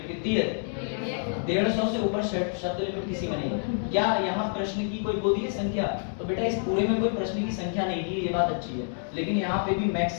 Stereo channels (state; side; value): silent; right; 59 dB below the other